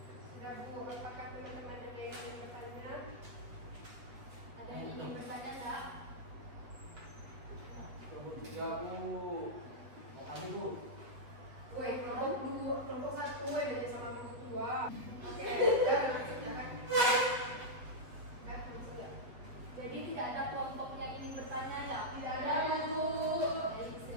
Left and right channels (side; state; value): left; late; 7.9 ms